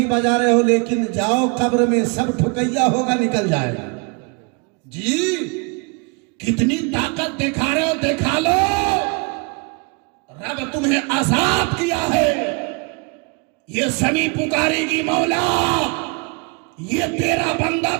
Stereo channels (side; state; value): left; quieter; 31.8 dB